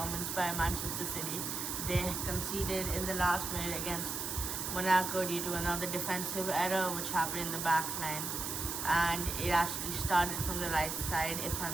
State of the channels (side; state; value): right; noise; hiss, 3 dB below the sound